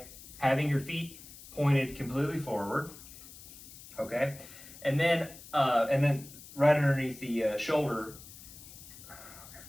having your feet pointed completely forward, okay? And then right underneath the shoulder.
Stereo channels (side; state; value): left; noise; hiss, 17 dB below the sound